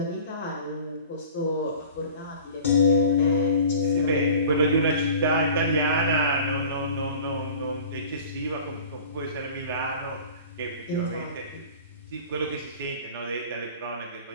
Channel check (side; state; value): both; inverted; correlation -0.43